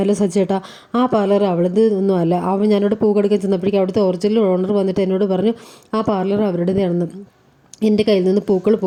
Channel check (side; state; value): both; identical; correlation 1.00